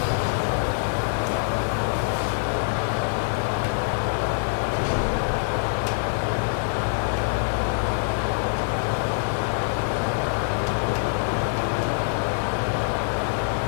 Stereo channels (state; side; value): silent; right; digital silence